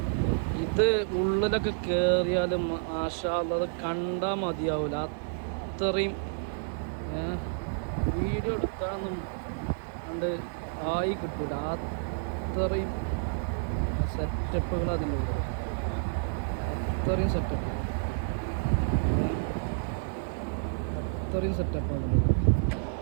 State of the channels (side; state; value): left; silent; digital silence